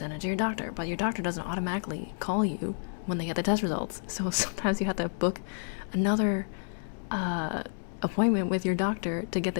it to your doctor. But your doctor doesn't automatically call you when they get the test results. So sometimes you have to book another appointment with your doctor to get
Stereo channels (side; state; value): right; silent; digital silence